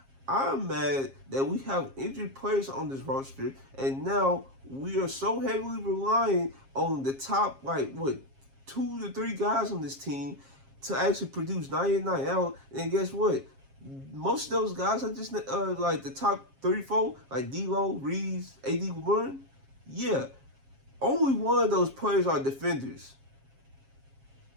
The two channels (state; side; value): late; left; 7.4 ms